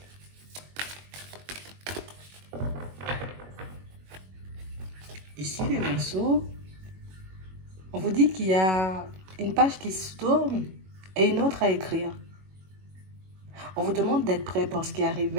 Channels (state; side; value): late; left; 21 ms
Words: Ici, les Verseaux, on vous dit qu'il y a une page qui se tourne et une autre à écrire. On vous demande d'être prêt pour ce qui arrive